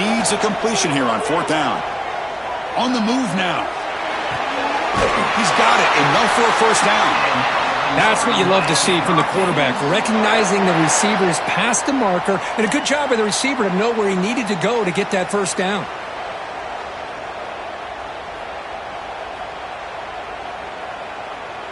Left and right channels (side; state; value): both; identical; correlation 1.00